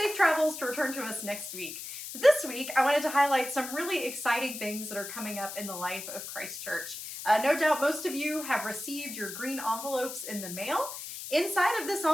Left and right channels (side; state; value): left; noise; hiss, 9 dB below the sound